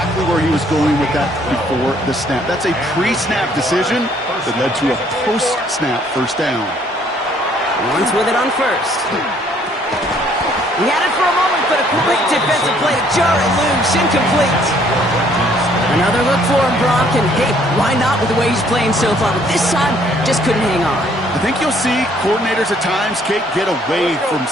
where he was going with that before the snap. That's a pre-snap decision that led to a post-snap 1st down. Lawrence with it on 1st. He had it for a moment, but a great defensive play to jar it loose, incomplete. Another look for him, Brock, and hey, why not with the way he's playing so far? But this time, just couldn't hang on. I think you'll see coordinators at times, Kate, get away from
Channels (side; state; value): both; normal; correlation 0.63